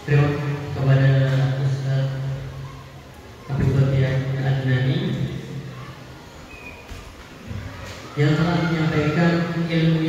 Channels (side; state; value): both; identical; correlation 1.00